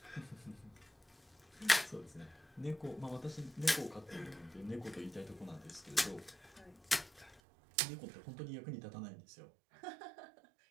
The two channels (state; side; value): drops out; left; at 7.4 s